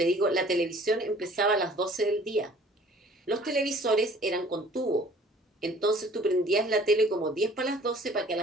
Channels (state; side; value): normal; both; correlation 0.53